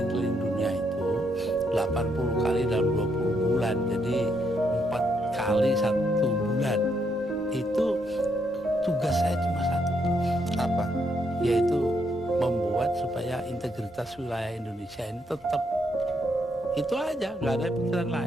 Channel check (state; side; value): normal; both; correlation 0.76